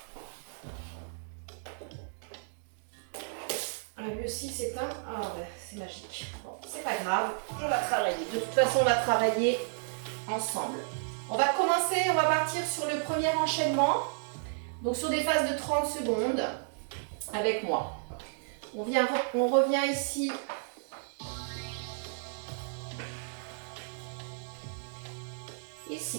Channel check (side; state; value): left; silent; digital silence